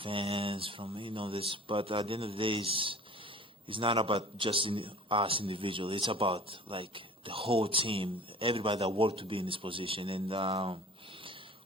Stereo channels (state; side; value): normal; both; correlation 0.43